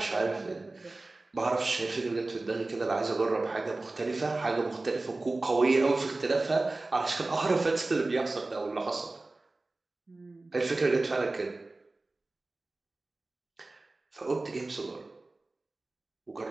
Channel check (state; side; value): quieter; left; 3.1 dB